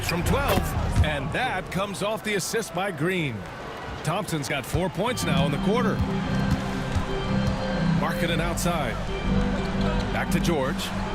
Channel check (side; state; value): both; identical; correlation 1.00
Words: from 12, and that comes off the assist by Green. Thompson's got 4 points now in the quarter. Markkanen outside. Back to George.